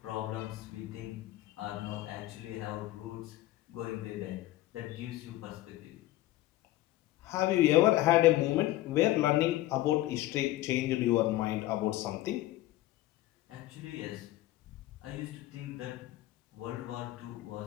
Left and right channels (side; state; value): right; quieter; 16.0 dB